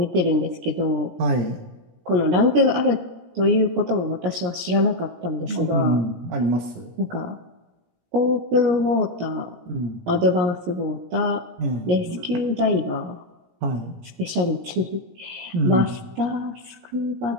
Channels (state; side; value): late; left; 17 ms